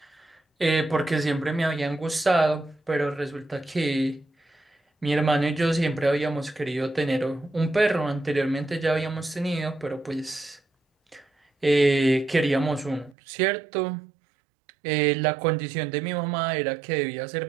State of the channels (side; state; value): left; drops out; at 13.2 s